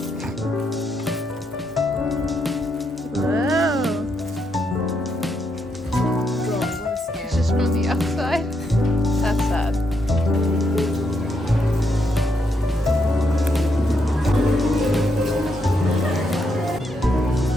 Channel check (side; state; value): both; normal; correlation 0.78